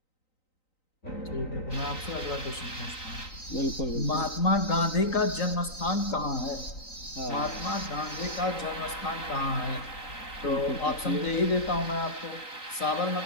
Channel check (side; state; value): right; late; 3.9 ms